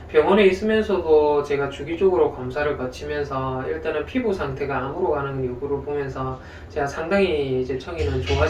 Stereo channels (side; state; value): both; identical; correlation 1.00